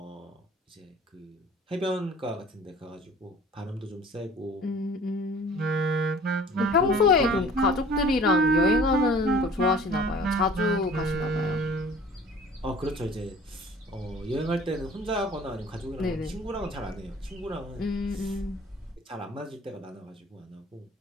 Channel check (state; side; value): normal; both; correlation 0.48